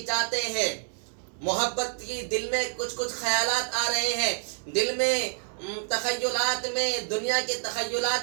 جاتے ہیں، محبت کی دل میں کچھ خیالات آ رہے ہیں، دل میں تخیلات میں، دنیا کے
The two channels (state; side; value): silent; left; 59 dB below the other